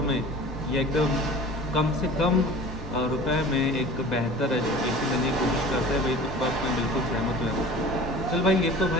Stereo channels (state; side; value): normal; both; correlation 0.41